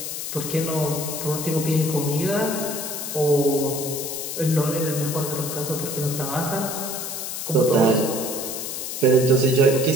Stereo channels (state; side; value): noise; left; hiss, 5 dB below the sound